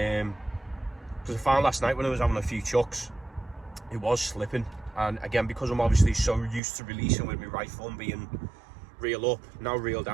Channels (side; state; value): left; drops out; at 6.6 s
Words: Because I found last night when I was having a few chucks, it was slipping, and again, because I'm obviously so used to releasing with my right thumb being reel up, now reel